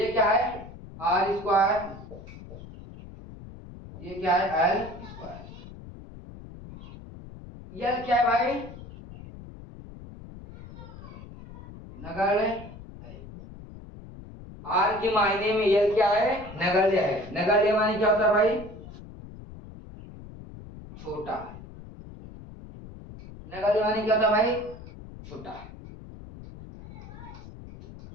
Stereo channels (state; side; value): noise; left; rumble, 15 dB below the sound